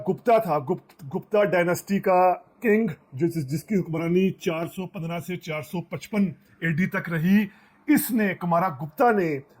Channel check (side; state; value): both; identical; correlation 1.00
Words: था, गुप्ता डायनेस्टी का किंग, जिसकी हुक्मरानी 415 से 455 एडी तक रही, इसने, कुमारा गुप्ता ने,